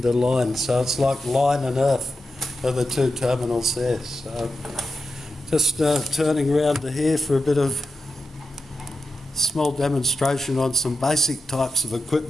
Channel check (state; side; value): normal; both; correlation 0.89